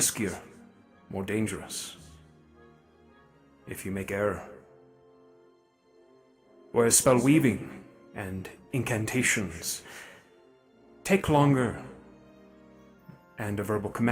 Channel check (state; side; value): identical; both; correlation 1.00